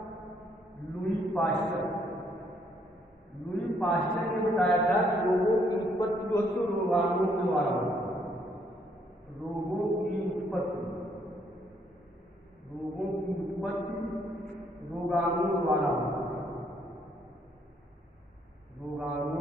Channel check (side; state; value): both; normal; correlation 0.69